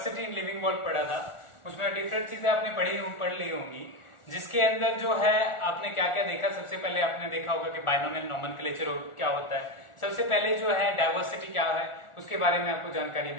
इन लिविंग वर्ल्ड पढ़ा था, उसमें डिफरेंट चीजें आपने पढ़ ली होंगी, जिसके अंदर जो है आपने क्या क्या देखा। सबसे पहले आपने देखा होगा कि बाइनोमियल नोमेनक्लेचर क्या होता है। सबसे पहले जो है डाइवर्सिटी क्या है उसके बारे में आपको जानकारी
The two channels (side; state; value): right; late; 1.4 ms